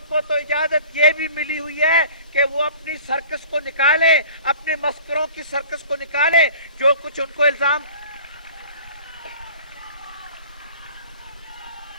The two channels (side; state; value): both; inverted; correlation -0.46